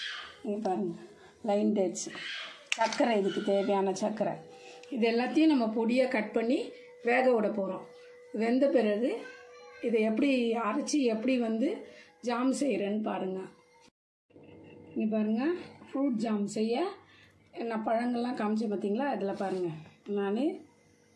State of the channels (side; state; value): both; identical; correlation 1.00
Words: இங்கே பாருங்கள், லைன் டேட்ஸ், சர்க்கரை, இதுக்கு தேவையான சர்க்கரை. இது எல்லாத்தையும் நம்ம பொடியாக கட் பண்ணி வேக விட போகிறோம். வெந்த பிறகு இதை எப்படி அரைச்சி எப்படி வந்து ஜாம் செய்கிறேன்னு பாருங்கள். இங்கே பாருங்கள், ஃப்ரூட் ஜாம் செய்ய நான் பழங்கள்லாம் காமிச்சேன் பார்த்தீங்களா. அதில் பாருங்கள், நான்